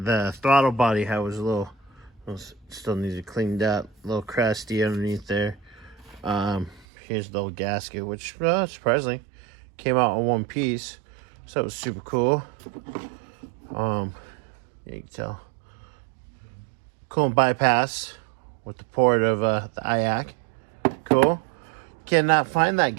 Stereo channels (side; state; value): left; drops out; at 6.9 s